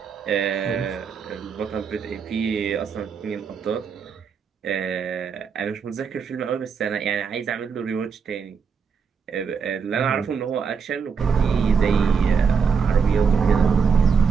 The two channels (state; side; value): quieter; left; 6.0 dB